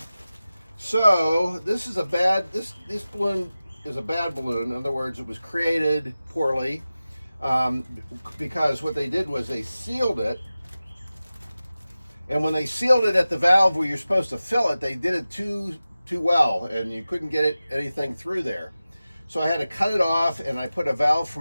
So this is this balloon is a bad balloon. In other words, it was created poorly, because what they did was they sealed it, and when they sealed it at the valve where you're supposed to fill it, they did it too well, and you couldn't get anything through there. So I had to cut it off, and I put a valve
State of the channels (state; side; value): inverted; both; correlation -0.96